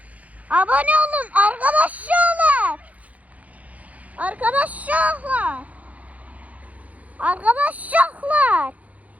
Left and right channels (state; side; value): late; left; 0.070 ms